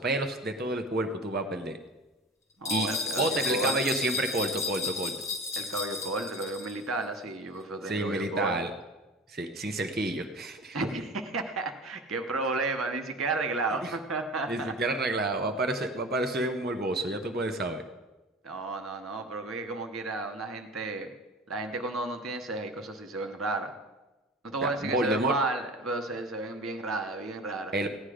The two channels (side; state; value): both; normal; correlation 0.37